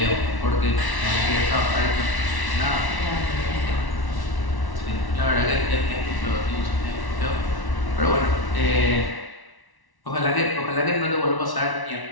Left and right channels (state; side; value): late; right; 1.1 ms